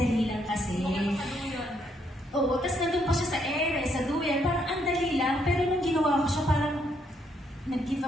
lang kasi. Oo, tapos nandun pa siya sa ere, sa duyan, parang ang dali lang, pero nung ginawa ko siya, parang nag-give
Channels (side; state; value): both; normal; correlation 0.73